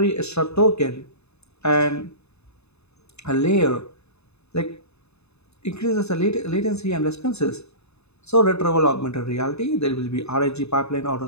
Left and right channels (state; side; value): late; right; 0.80 ms